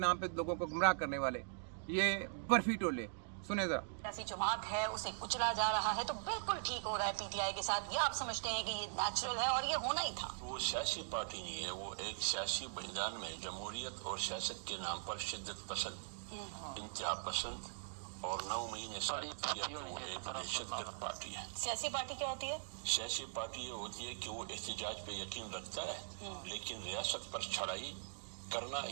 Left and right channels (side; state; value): left; silent; digital silence